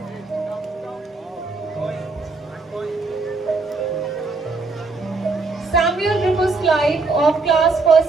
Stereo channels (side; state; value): left; quieter; 3.8 dB